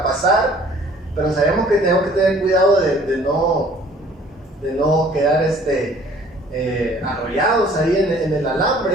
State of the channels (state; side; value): normal; both; correlation 0.54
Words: pasar, pero sabíamos que teníamos que tener cuidado de de no quedar arrollados ahí en el